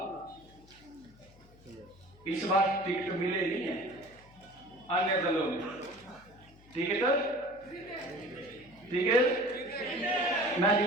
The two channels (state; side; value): noise; left; hum, 25 dB below the sound